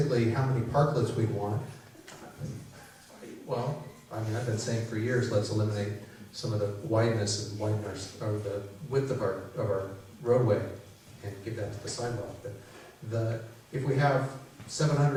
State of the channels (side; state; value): both; identical; correlation 1.00